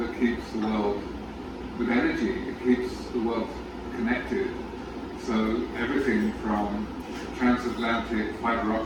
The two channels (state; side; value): identical; both; correlation 1.00